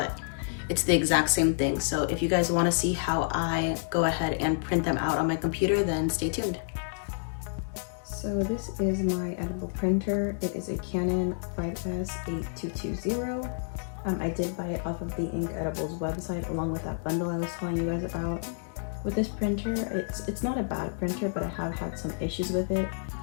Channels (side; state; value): right; silent; digital silence